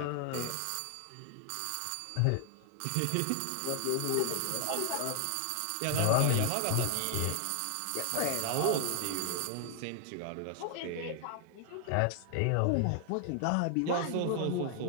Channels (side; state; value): both; different; correlation 0.00